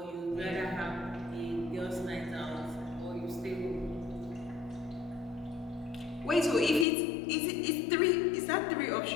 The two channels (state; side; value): drops out; right; at 6.9 s